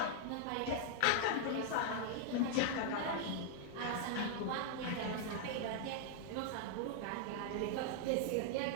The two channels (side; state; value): both; different; correlation -0.01